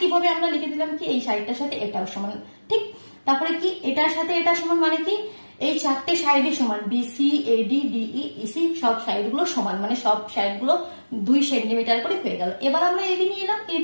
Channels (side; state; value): both; inverted; correlation -1.00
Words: আমরা লিখে দিলাম কি এই সাইডটার সাথে এটাও সমান, ঠিক। তারপরে কি এটার সাথে এটা সমান, মানে কি এই চারটে সাইডই সমান, বিসি এডি ডিই ইসি সব সাইড গুলো সমান, মানে সব সাইড গুলো 2 সেন্টিমিটার করে হয়ে গেল। এবার আমরা এবি নিয়ে এলাম,